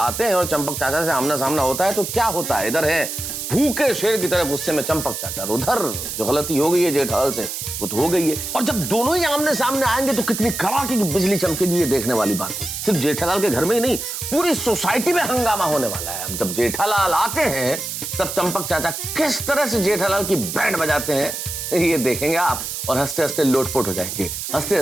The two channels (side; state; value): right; noise; hiss, 5 dB below the sound